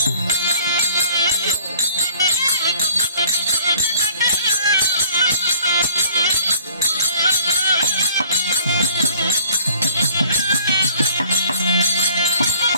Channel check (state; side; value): inverted; both; correlation -0.53